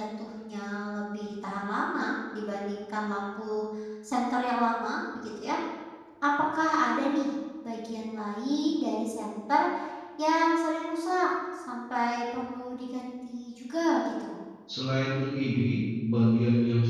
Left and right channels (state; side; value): identical; both; correlation 1.00